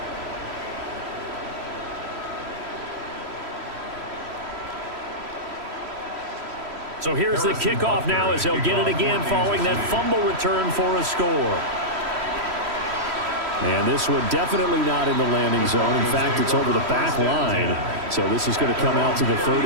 So here's the kickoff now as they'll get it again following that fumble return for a score. And this one definitely not in the landing zone. In fact, it's over the back line. So this is going to come out to the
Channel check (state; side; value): late; left; 3.1 ms